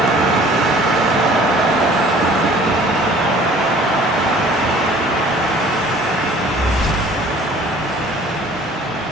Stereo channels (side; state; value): both; normal; correlation 0.51